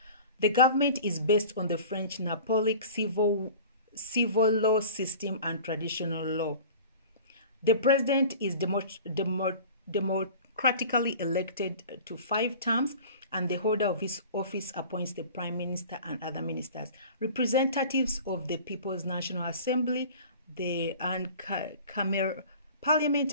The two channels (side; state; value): both; inverted; correlation -0.41